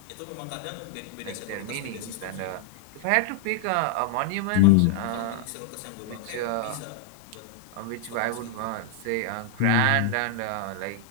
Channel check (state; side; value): different; both; correlation -0.01